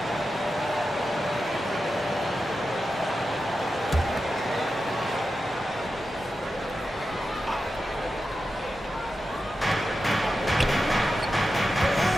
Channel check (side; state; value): both; normal; correlation 0.91